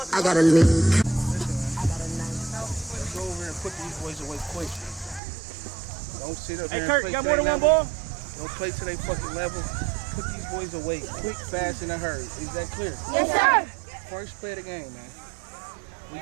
I got a lean. Let's go over and put these boys away quick. Don't sit up here and Kurt, play you got to more their than one level. ball? Don't play to their fucking level. Put these boys away quick, fast, in a hurry. Is that clear? Yes, sir. First play of the game, man. We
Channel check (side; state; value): left; drops out; at 5.2 s